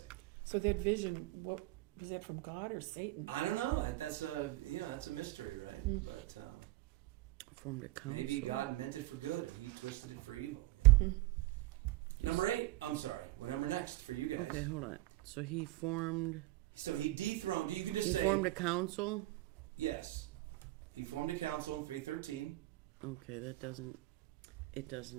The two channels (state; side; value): quieter; left; 18.7 dB